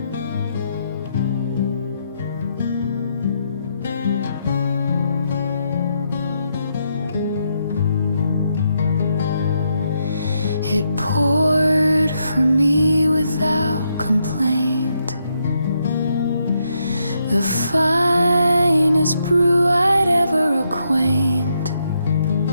It poured for me without complaint, the finest brew I'd ever acquaint.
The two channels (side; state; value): both; inverted; correlation -0.78